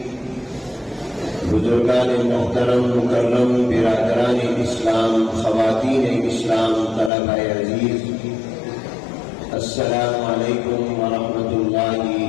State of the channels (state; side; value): drops out; right; at 7.1 s